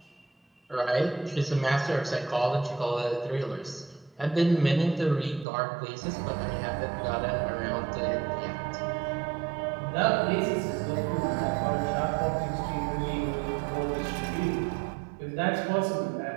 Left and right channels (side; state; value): left; drops out; at 5.5 s